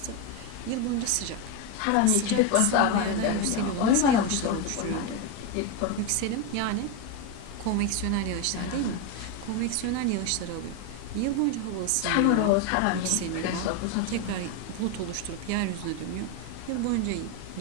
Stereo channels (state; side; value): different; both; correlation 0.03